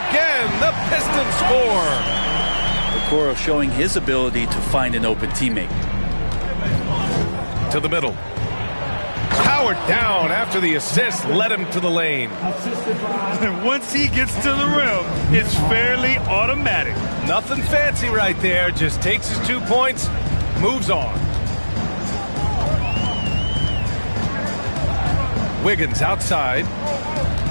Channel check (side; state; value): both; inverted; correlation -1.00